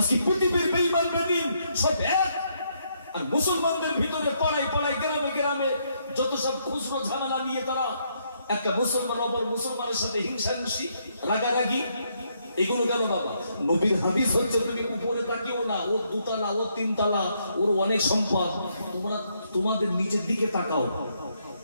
পৃথিবীর বেঈমান বেদিন সব এক, আর মুসলমানদের ভিতরে পাড়ায় গ্রামে গ্রামে যত সব খুচরো ঝামেলা নিয়ে তারা একটা মুসলমান অপর মুসলমানের সাথে হিংসাহিংসি, রাগারাগি, এগুলো কেন বাবা? নবীর হাদিস হচ্ছে তুমি উপরে তাকিও না, ওর দুতলা, ওর তিনতলা, ওর অনেক সম্পদ। তোমরা তোমাদের নিচের দিকে তাকাও।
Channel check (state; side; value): inverted; both; correlation -0.74